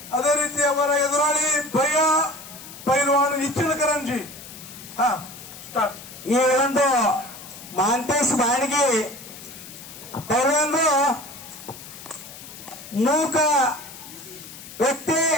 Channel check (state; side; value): noise; left; hiss, 15 dB below the sound